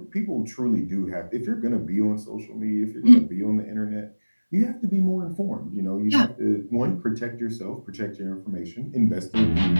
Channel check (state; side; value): inverted; both; correlation -1.00